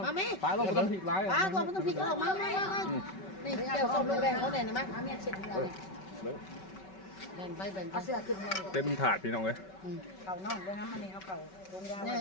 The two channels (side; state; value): right; late; 5.3 ms